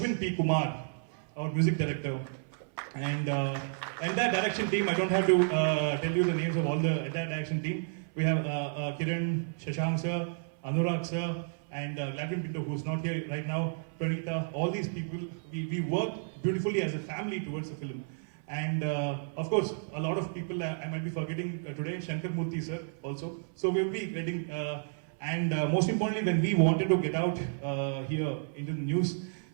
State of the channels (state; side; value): silent; left; 56 dB below the other